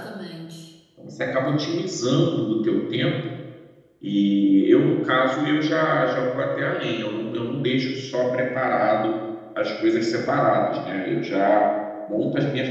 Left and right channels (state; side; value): identical; both; correlation 1.00